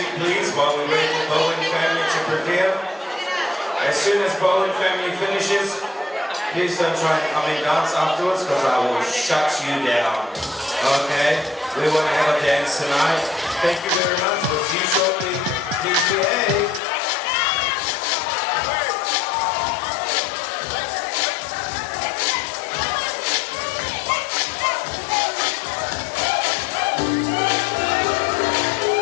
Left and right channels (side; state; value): right; drops out; at 16.8 s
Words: please, while we wait for Bowen family to prepare? As soon as Bowen family finishes, please don't try and come and dance afterwards, because I will shut you down. Okay? We want to have a dance tonight. Thank you very much. We'll see you shortly. PTA.